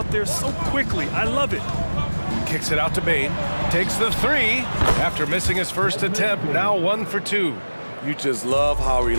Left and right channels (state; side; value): inverted; both; correlation -1.00